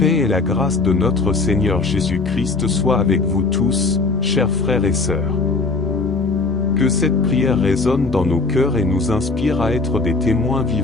et la grâce de notre Seigneur Jésus-Christ soient avec vous tous, chers frères et sœurs. Que cette prière résonne dans nos cœurs et nous inspire à être des témoins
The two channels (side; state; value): right; quieter; 3.8 dB